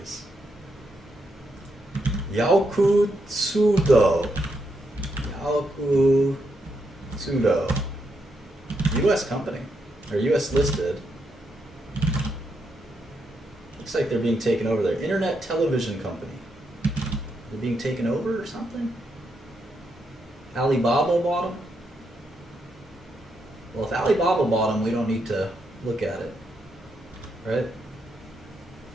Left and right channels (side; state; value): both; normal; correlation 0.81